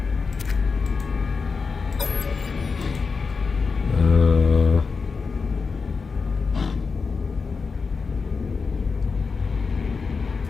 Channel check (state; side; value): quieter; right; 4.9 dB